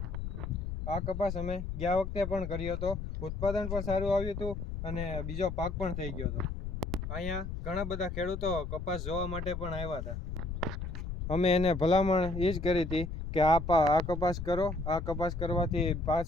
પણ કર્યો હતો. ઉત્પાદન પણ સારું આવ્યું હતું અને બીજો પાક પણ થઈ ગયો હતો. અહીંયા ઘણા બધા ખેડૂતો કપાસ જોવા માટે પણ આવ્યા હતા. અમે એને ભલામણ એ જ કરી હતી કે આ કપાસ કરો. આ કપાસ કરવાથી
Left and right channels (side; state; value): left; noise; rumble, 5 dB below the sound